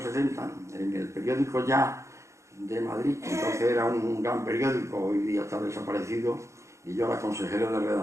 en el periódico Ya de Madrid, entonces era un gran periódico, hoy día está desaparecido, y yo era consejero de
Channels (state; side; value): late; left; 0.14 ms